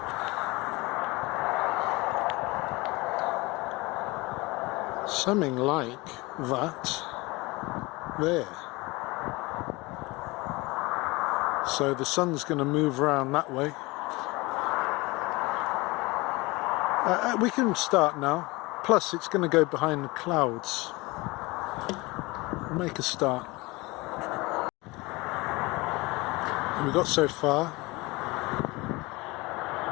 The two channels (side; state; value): right; quieter; 23.2 dB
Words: Something like that there. So the sun's going to move around that way. We can start now. Plus it's going to go behind the clouds. Make a start. And we got so far.